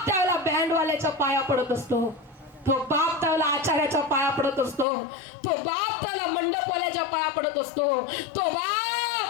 त्यावेळेला बँडवाल्याच्या पाया पडत असतो, तो बाप त्यावेळेला आचार्याच्या पाया पडत असतो, तो बाप त्याला मंडपवाल्याच्या पाया पडत असतो, तो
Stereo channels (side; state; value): right; drops out; at 4.9 s